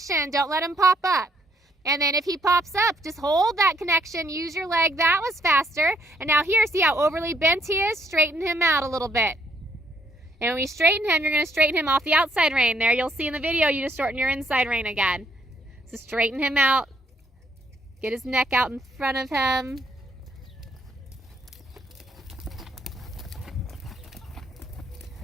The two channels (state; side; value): normal; both; correlation 0.70